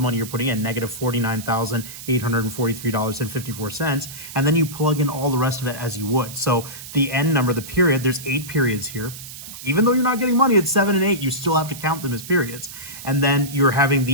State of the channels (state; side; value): noise; right; hiss, 13 dB below the sound